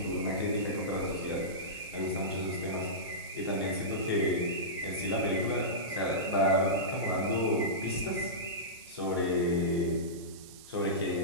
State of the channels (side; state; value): right; noise; hiss, 18 dB below the sound